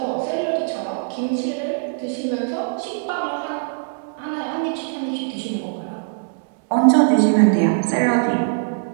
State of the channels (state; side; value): silent; left; digital silence